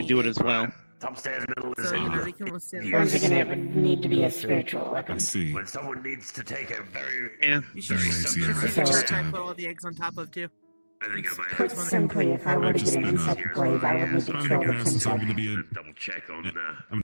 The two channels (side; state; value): both; inverted; correlation -1.00